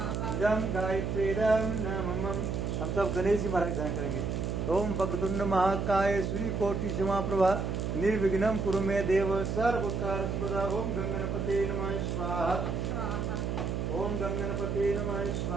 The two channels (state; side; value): noise; right; hum, 1 dB below the sound